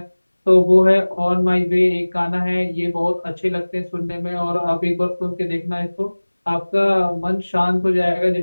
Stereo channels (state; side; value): inverted; both; correlation -1.00